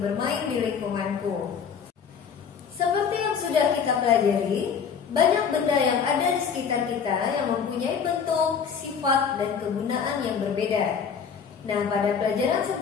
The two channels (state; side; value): quieter; right; 6.7 dB